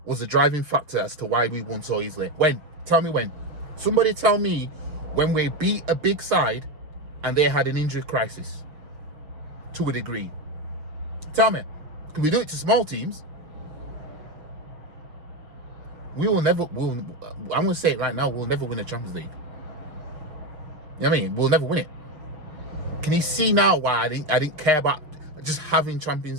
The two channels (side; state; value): left; late; 6.5 ms